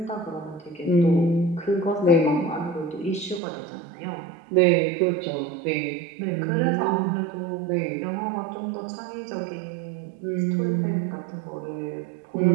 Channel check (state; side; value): drops out; left; at 3.4 s